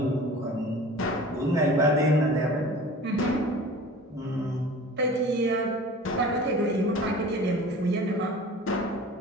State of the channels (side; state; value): both; normal; correlation 0.41